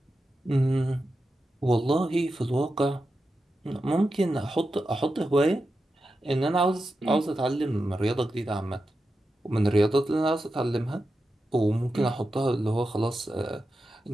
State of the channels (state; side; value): normal; both; correlation 0.90